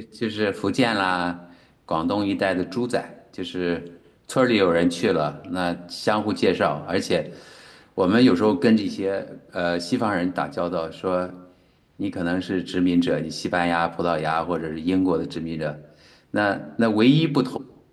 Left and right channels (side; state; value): both; identical; correlation 1.00